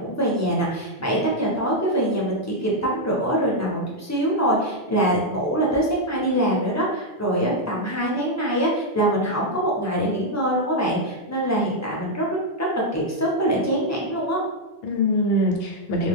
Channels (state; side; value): normal; both; correlation -0.01